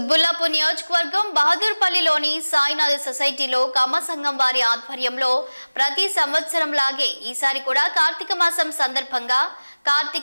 నియోజకవర్గం బహదూర్పల్లిలోని సాయినాథ్ సొసైటీలో కమ్మ సంఘం వారి ఆధ్వర్యంలో ప్రతి సంవత్సరం లాగే ఈసారి కూడా కార్తీక మాసం సందర్భంగా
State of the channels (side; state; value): both; inverted; correlation -1.00